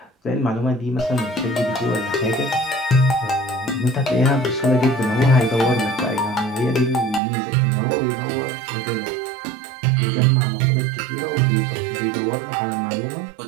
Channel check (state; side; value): drops out; left; at 7.2 s